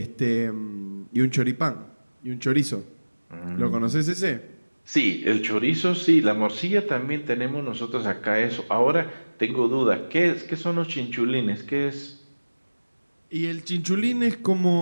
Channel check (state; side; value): inverted; both; correlation -1.00